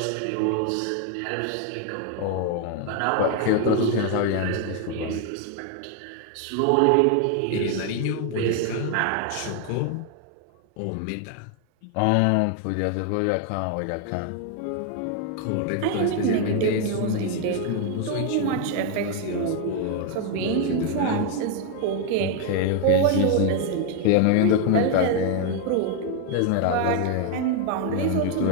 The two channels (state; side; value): different; both; correlation 0.01